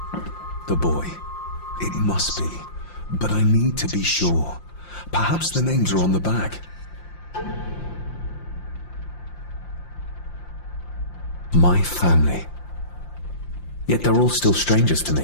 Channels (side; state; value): right; late; 5.7 ms